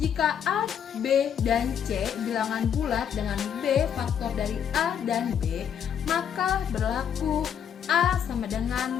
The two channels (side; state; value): right; quieter; 8.4 dB